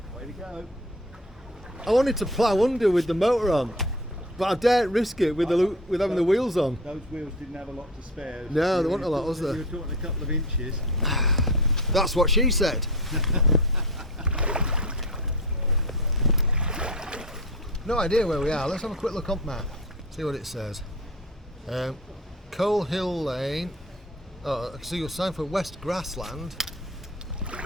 go. I wanted to plough under with the motor on, but I daren't risk it with having the wheels on. Those wheels didn't have a lot to spare. No, there wasn't a lot, was there? You were talking a couple of inches. That's what she said. No idea where we are. Let's have a quick look on map. See what it says. Coal Hill Lane. Oh, I can see your sign for West Grassland.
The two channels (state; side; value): normal; both; correlation 0.31